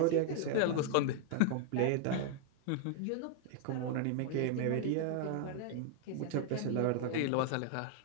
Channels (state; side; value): different; both; correlation 0.00